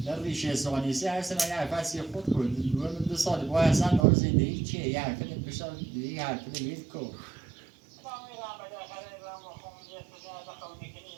در ریشه سوانیسی هر سنه یه حرفت خود کرد 2 سال با اصلا دار زندگی چیه یه حرفت بشار یه حرفت ویل کو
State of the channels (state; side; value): drops out; left; at 4.0 s